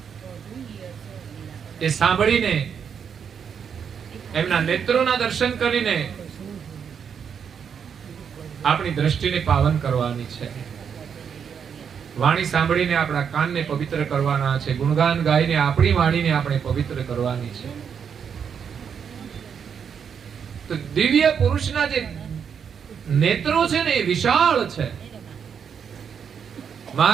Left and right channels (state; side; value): quieter; left; 7.3 dB